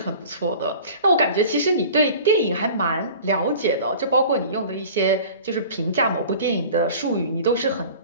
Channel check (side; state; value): both; inverted; correlation -0.42